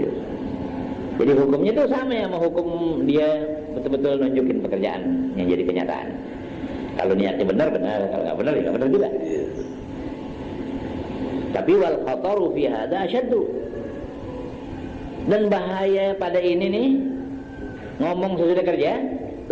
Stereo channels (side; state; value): both; identical; correlation 1.00